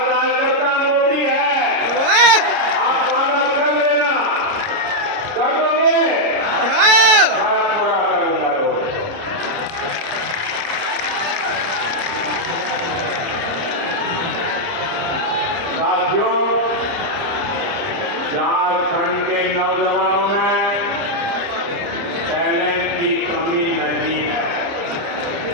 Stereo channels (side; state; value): left; late; 30 ms